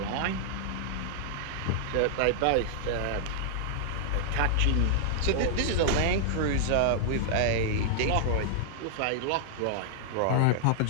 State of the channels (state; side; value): different; both; correlation -0.01